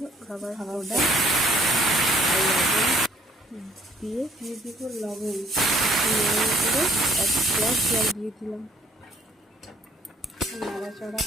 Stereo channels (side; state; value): both; normal; correlation 0.61